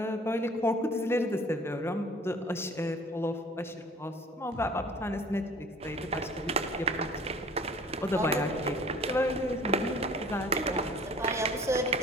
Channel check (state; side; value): normal; both; correlation 0.50